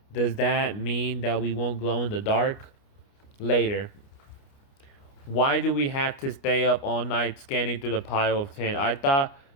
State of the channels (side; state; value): right; late; 29 ms